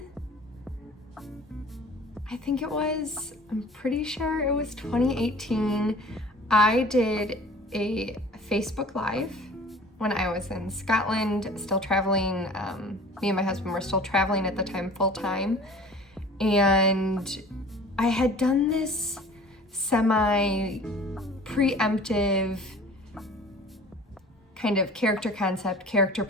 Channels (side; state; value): both; normal; correlation 0.45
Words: I think it was, I'm pretty sure it was 2018, I did a Facebook Live when I was in Scotland, still traveling. Me and my husband were still traveling at the time full time. And I had done this semi-preemptive kind of character concept, character